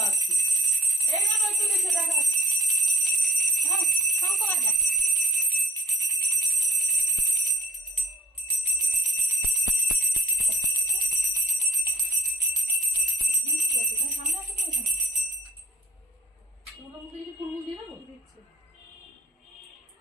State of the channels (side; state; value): both; normal; correlation 0.63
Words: দিয়ে। এই না একটু দেখে দেখা হ্যাঁ শঙ্খ বাজা সামনে আসো তো এখানে তোমার মুখে কিছু ফুলমুল দিয়ে দেবো দিচ্ছে